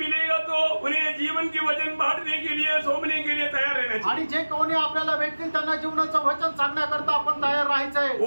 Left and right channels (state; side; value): inverted; both; correlation -1.00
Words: तो उन्हें जीवन की वचन बांटने के लिए, सौंपने के लिए तैयार रहना चाहिए। आणि जे कोणी आपल्याला भेटतील त्यांना जीवनाचं वचन सांगण्याकरता आपण तयार राहायचंय।